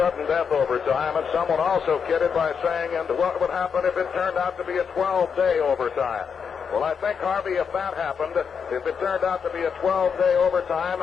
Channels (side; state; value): right; quieter; 6.5 dB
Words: death overtime, and someone also kidded by saying, and what would happen if it turned out to be a 12-day overtime? Well, I think, Harvey, if that happened, if it turned out to be a 12-day